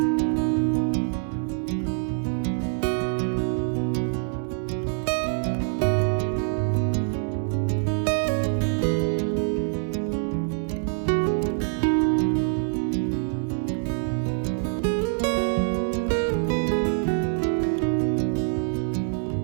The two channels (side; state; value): left; silent; digital silence